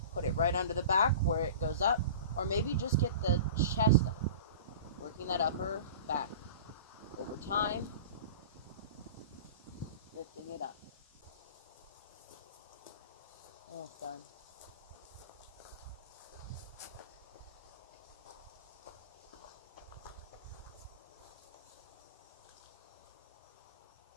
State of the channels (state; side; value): inverted; both; correlation -0.36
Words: put it right under the back where it goes up, or maybe just get the chest up, working that upper back. Over time, lifting it up. Almost done.